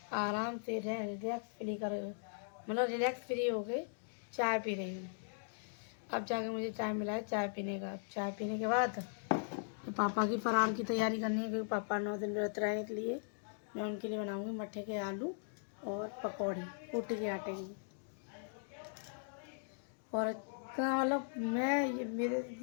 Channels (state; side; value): silent; right; digital silence